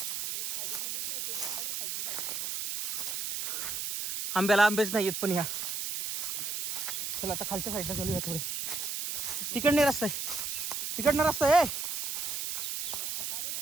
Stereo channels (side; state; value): right; noise; hiss, 2 dB below the sound